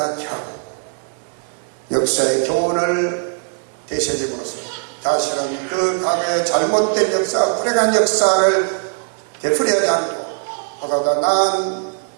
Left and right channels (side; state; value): left; silent; 61 dB below the other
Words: 하고 역사의 교훈을 되새김으로써 다시는 그 과거의 잘못된 역사, 불행한 역사를 되풀이하지 않고 보다 더 나은